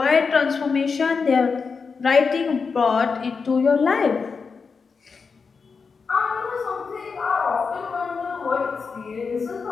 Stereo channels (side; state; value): right; quieter; 5.2 dB